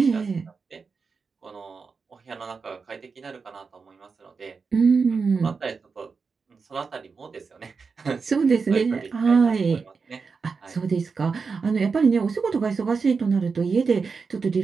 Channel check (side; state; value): left; quieter; 5.0 dB